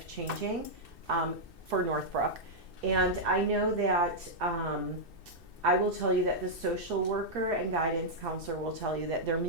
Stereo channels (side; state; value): left; late; 2.6 ms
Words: for Northbrook. And I know that I will tell you that the social worker and guidance counselor will tell you that they're